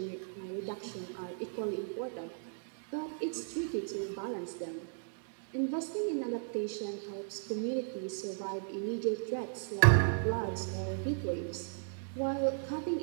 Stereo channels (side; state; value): left; silent; digital silence